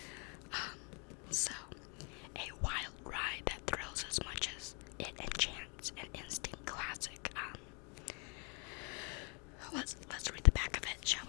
So, a wild ride that thrills as much as it enchants, an instant classic. Let's read the back of it, shall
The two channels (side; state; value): right; quieter; 34.6 dB